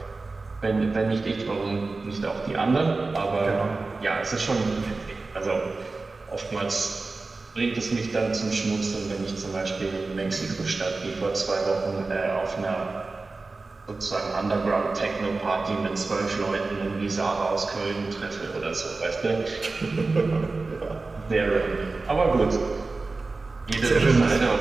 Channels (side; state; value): left; quieter; 3.7 dB